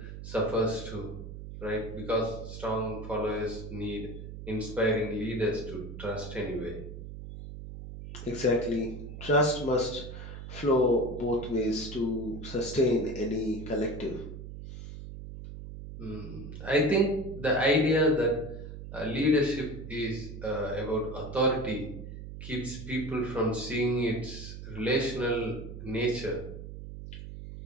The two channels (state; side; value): noise; right; hum, 10 dB below the sound